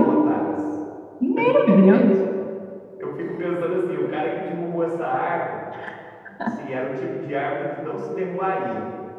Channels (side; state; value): both; identical; correlation 1.00